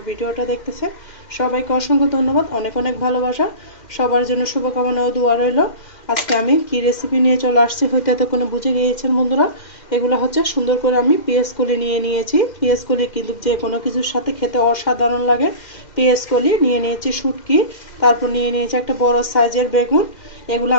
ভিডিওটা দেখতেছে সবাইকে অসংখ্য ধন্যবাদ, অনেক অনেক ভালোবাসা। সবার জন্য শুভকামনা ও দোয়া রইল। আজকে আমি কি রেসিপি নিয়ে চলে আসছি হয়তো এতক্ষণে বুঝে গিয়েছেন বন্ধুরা। এগুলো হচ্ছে সুন্দর করে আমি পেঁয়াজ কলি নিয়ে নিয়েছি। পেঁয়াজ কলি কিন্তু যে কোনো কিছুর সাথে খেতে অসাধারণ লাগে। পেঁয়াজ কলি নিয়ে নিয়েছি, শুটকি, তারপর নিয়ে নিয়েছি একটা বড় সাইজের বেগুন। এগুলো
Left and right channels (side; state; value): right; late; 2.0 ms